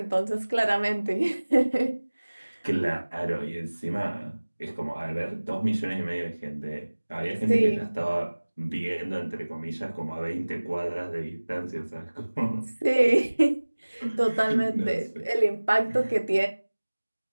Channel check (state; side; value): inverted; both; correlation -1.00